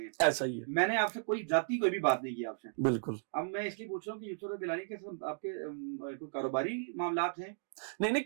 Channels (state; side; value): silent; left; digital silence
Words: ऐसा ही है। मैंने आपसे कोई जाती कोई भी बात नहीं की आपसे। बिल्कुल। अब मैं इसलिए पूछ रहा हूँ कि यूसुफ रज़ा गिलानी के साथ आपके कोई कारोबारी मामलात हैं? नहीं